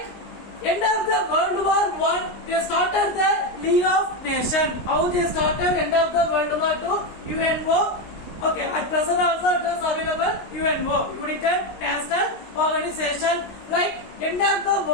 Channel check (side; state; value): right; late; 19 ms